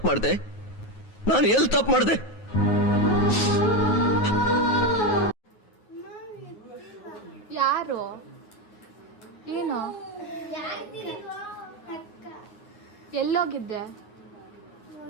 ಮಾಡ್ದೆ? ನಾನು ಎಲ್ಲಿ ತಪ್ಪು ಮಾಡ್ದೆ? ಯಾರು? ಏನು? ಎಲ್ಲೋಗಿದ್ದೆ?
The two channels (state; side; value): late; right; 9.4 ms